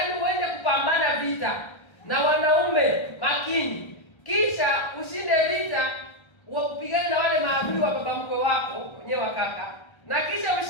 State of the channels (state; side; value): late; right; 1.3 ms